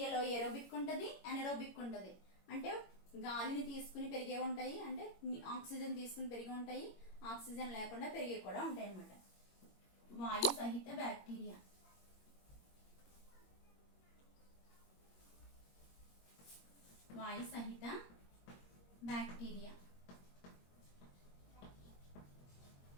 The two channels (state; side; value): late; right; 21 ms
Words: ఏరోబిక్ ఉంటుంది, అనెరోబిక్ ఉంటుంది. అంటే గాలిని తీసుకుని పెరిగే ఉంటాయి, అంటే ఆక్సిజన్ తీసుకుని పెరిగి ఉంటాయి, ఆక్సిజన్ లేకుండా పెరిగే కూడా ఉంటాయి అన్నమాట. వాయు సహిత బ్యాక్టీరియా.